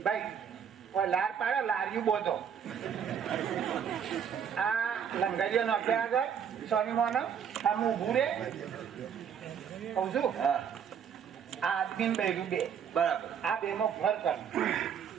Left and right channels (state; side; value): quieter; left; 7.8 dB